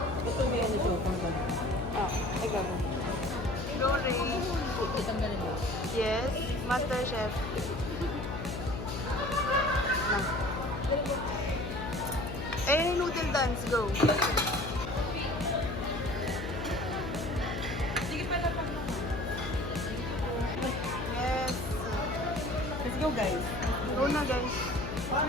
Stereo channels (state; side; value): noise; left; hum, 6 dB below the sound